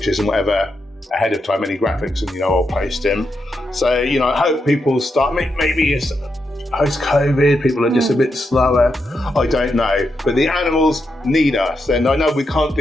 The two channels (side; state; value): both; normal; correlation 0.84